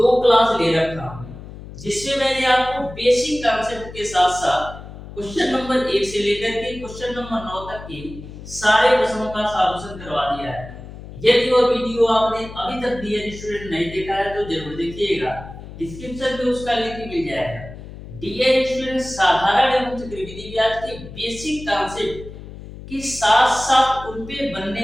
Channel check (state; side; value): noise; left; hum, 14 dB below the sound